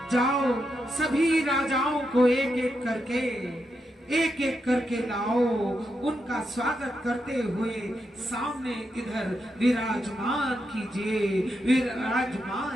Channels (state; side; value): normal; both; correlation 0.84